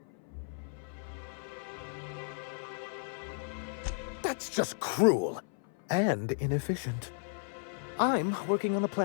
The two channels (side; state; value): right; silent; 55 dB below the other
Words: That's just cruel and inefficient. I'm working on a